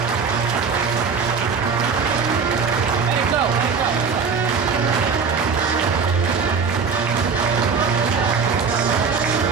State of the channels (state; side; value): quieter; left; 5.5 dB